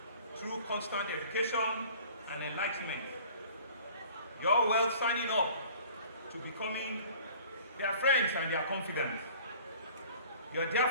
through constant education and enlightenment. You're well signing up to becoming their friends and their confidants. You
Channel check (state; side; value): inverted; both; correlation -0.48